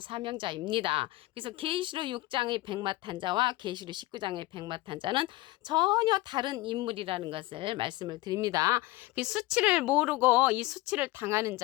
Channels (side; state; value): right; quieter; 19.1 dB